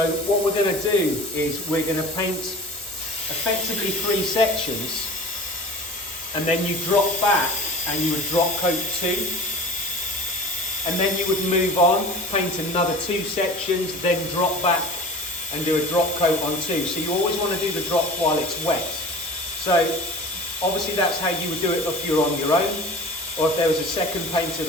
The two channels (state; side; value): normal; both; correlation 0.40